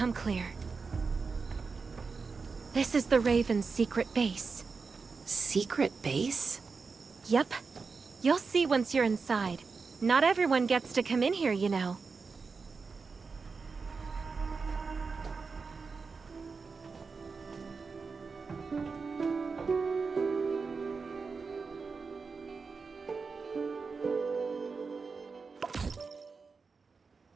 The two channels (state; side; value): quieter; left; 4.8 dB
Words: clear. This is the Raven's secret base. Secret base? Yep. You'll see once you're inside. Not everyone gets to come in here, you know.